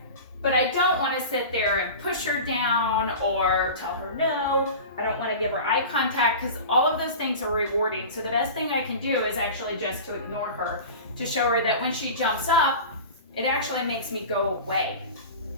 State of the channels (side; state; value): both; inverted; correlation -0.33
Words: But I don't want to sit there and push her down or tell her no. I don't want to give her eye contact because all of those things are rewarding. So the best thing I can do is actually just to ignore her, to show her that when she jumps up, it actually makes me go away.